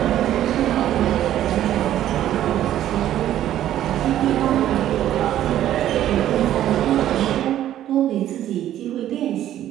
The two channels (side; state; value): left; quieter; 12.2 dB